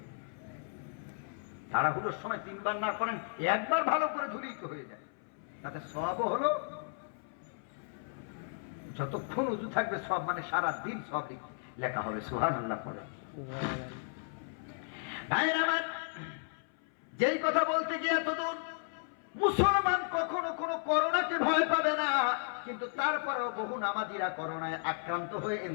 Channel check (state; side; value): silent; right; 55 dB below the other